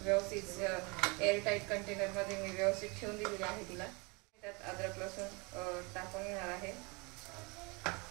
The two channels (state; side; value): quieter; left; 29.0 dB